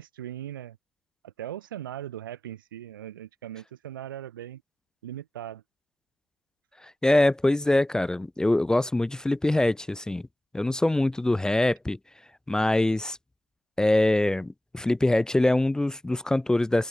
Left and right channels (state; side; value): normal; both; correlation 0.96